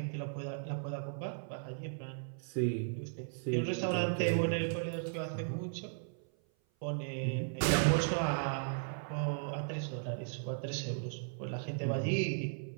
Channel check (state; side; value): silent; left; 54 dB below the other